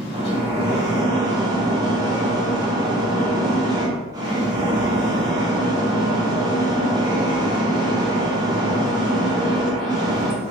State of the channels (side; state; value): both; normal; correlation 0.50